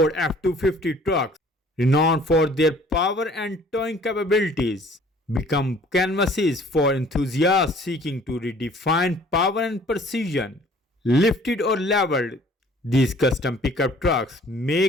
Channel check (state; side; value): normal; both; correlation 0.53